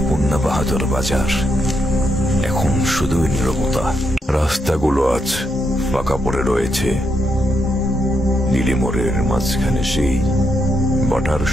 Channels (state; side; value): normal; both; correlation 0.80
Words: বাহাদুর বাজার এখন শুধুই নীরবতা। রাস্তাগুলো আজ ফাঁকা পড়ে রয়েছে। নীলিমোড়ের মাঝখানে সেই বাটার